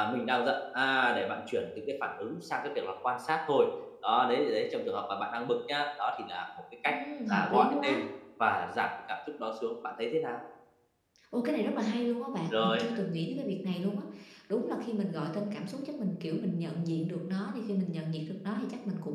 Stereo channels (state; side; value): identical; both; correlation 1.00